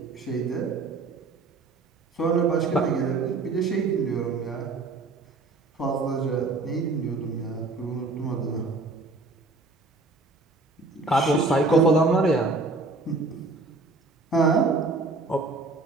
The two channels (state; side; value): quieter; left; 3.5 dB